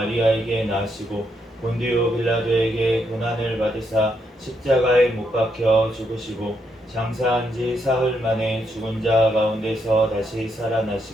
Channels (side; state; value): both; normal; correlation 0.78